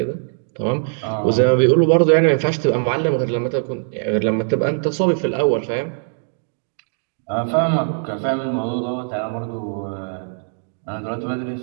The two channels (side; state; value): left; silent; digital silence